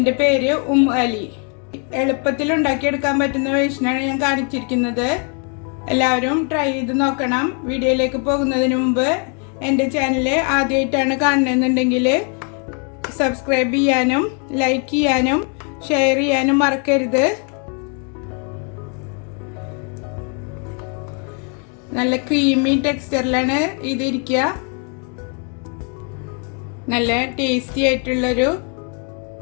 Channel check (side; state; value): right; quieter; 39.3 dB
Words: പേര് അലി. എളുപ്പത്തിൽ ഉണ്ടാക്കിയെടുക്കാൻ പറ്റുന്ന വേഷനാണ് ഞാൻ കാണിച്ചിരിക്കുന്നത്. എല്ലാവരും ട്രൈ ചെയ്ത് നോക്കണം. വീഡിയോയിലേക്ക് പോകുന്നതിന് മുമ്പ് എൻ്റെ ചാനൽ ആദ്യമായിട്ടാണ് കാണുന്നതെന്നുണ്ടെങ്കിൽ സബ്സ്ക്രൈബ് ചെയ്യാനും ലൈക്ക് ചെയ്യാനും ഷെയർ ചെയ്യാനും മറക്കരുത്. നല്ല ക്രീമി ടെക്സ്ചറിലാണ് ഇതിരിക്കുക. നല്ല ടേസ്റ്റി ആയിട്ടുള്ളൊരു